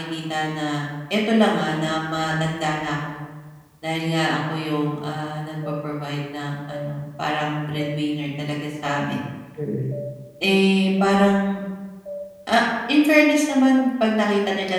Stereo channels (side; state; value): both; identical; correlation 1.00